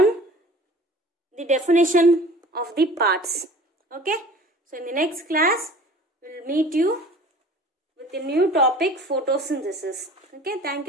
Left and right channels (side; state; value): both; normal; correlation 0.45